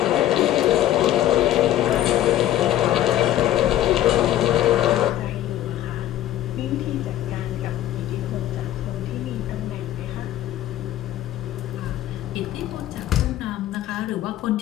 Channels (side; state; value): right; quieter; 13.0 dB